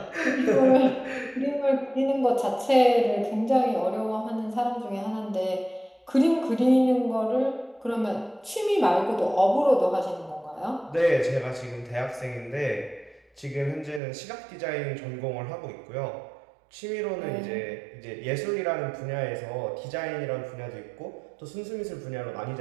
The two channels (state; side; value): drops out; left; at 14.0 s